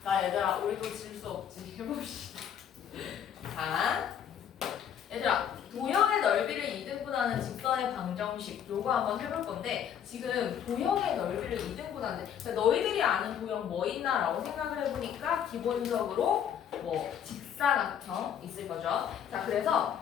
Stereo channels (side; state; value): right; quieter; 9.0 dB